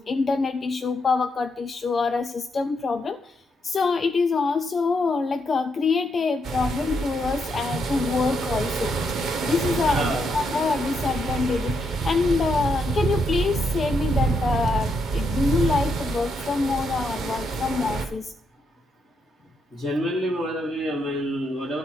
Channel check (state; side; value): normal; both; correlation 0.79